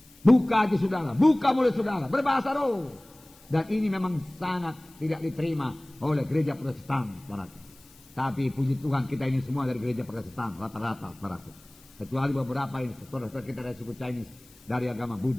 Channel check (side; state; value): left; noise; hiss, 26 dB below the sound